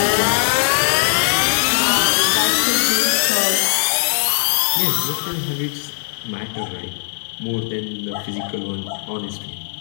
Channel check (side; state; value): right; silent; digital silence